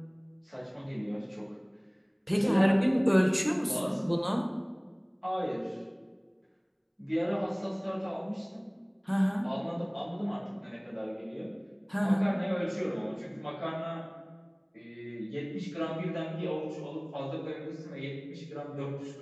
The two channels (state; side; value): identical; both; correlation 1.00